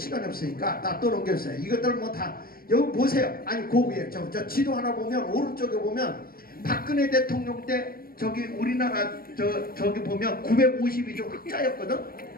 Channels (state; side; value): late; right; 0.43 ms